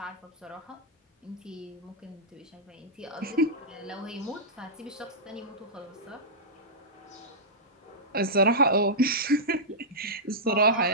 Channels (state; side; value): normal; both; correlation -0.12